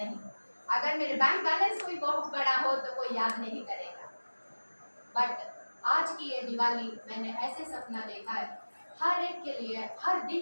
अगर मेरे बैंक बैलेंस कोई बहुत बड़ा हो तो कोई याद नहीं करेगा। बट आज की ये दिवाली मैंने ऐसे सपना देखा है, हर एक के लिए हर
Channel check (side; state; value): both; inverted; correlation -1.00